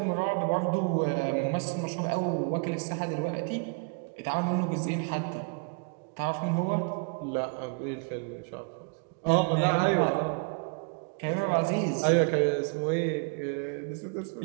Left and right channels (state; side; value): quieter; left; 36.8 dB